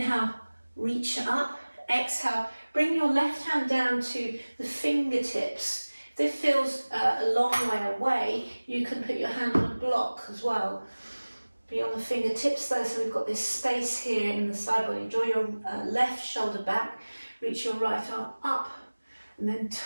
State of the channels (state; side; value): inverted; both; correlation -1.00